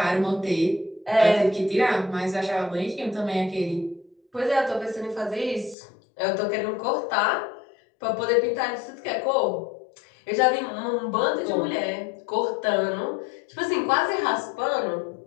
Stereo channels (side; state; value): right; drops out; at 5.8 s